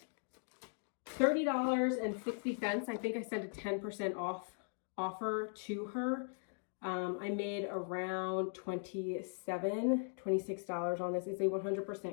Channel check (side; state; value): right; silent; 52 dB below the other